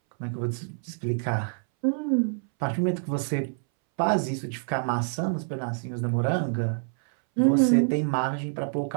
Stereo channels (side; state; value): left; silent; 60 dB below the other